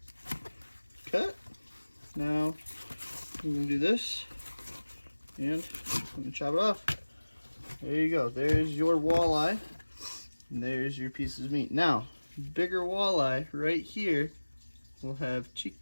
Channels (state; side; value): inverted; both; correlation -1.00